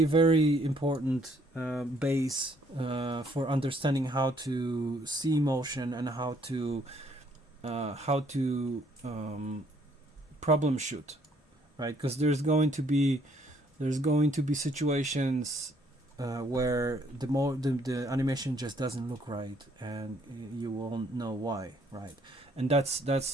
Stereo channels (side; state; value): both; normal; correlation 0.65